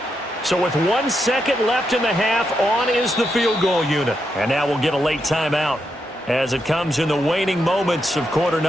So with 1 second left in the half, on is the field goal unit. And now we'll get a late timeout as it comes in the waning moments of quarter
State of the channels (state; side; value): normal; both; correlation 0.83